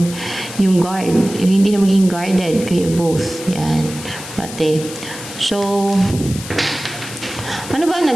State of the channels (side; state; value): left; noise; hiss, 12 dB below the sound